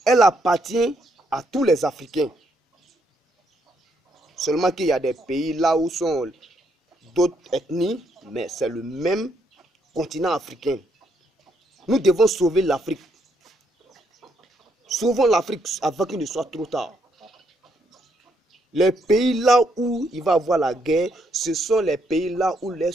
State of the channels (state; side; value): normal; both; correlation 0.74